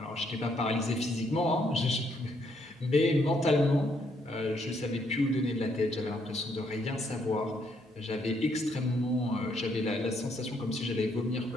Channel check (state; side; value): normal; both; correlation 0.72